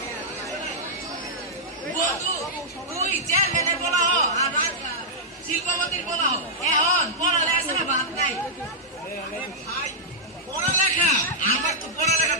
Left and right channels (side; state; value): both; normal; correlation -0.09